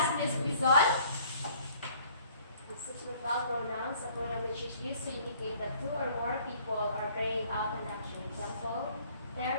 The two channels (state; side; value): inverted; both; correlation -0.57